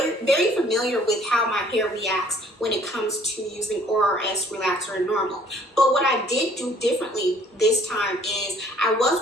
very familiar with how my hair reacts when it comes to using ORS relaxer and normal. But what I did do differently this time is I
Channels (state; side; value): normal; both; correlation 0.58